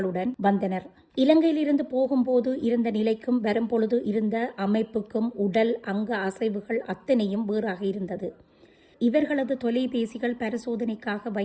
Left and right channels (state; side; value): identical; both; correlation 1.00